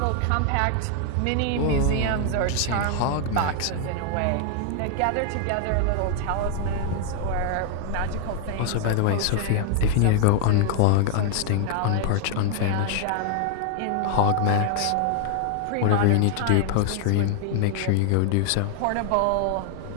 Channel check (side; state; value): both; different; correlation 0.00